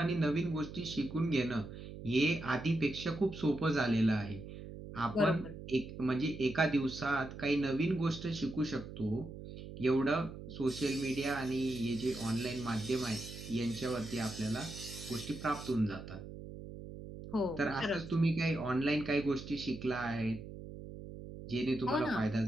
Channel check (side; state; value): right; noise; hum, 11 dB below the sound